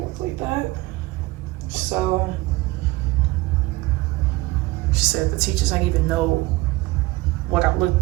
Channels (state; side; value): quieter; left; 20.3 dB